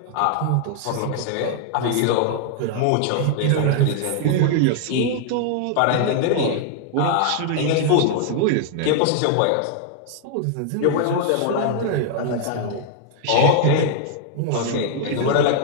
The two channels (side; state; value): both; different; correlation 0.00